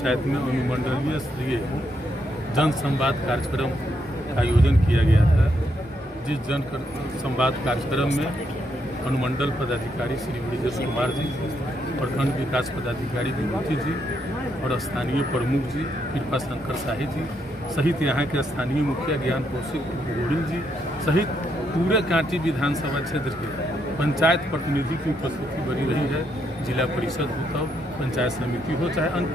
में अनुमंडलीय स्तरीय जन संवाद कार्यक्रम का आयोजन किया गया था। जिस जन संवाद कार्यक्रम में अनुमंडल पदाधिकारी श्री ब्रिजेश कुमार जी, प्रखंड विकास पदाधिकारी विभूति जी और स्थानीय प्रमुख जी कृपा शंकर शाही जी सहित यहाँ के स्थानीय मुखिया ज्ञान कौशिक गोहिल जी सहित पूरे कांटी विधानसभा क्षेत्र के पंचायत प्रतिनिधि की उपस्थिति बनी रही है। जिला परिषद हो, तो पंचायत समिति हो, चाहे अन्य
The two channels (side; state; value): both; normal; correlation 0.77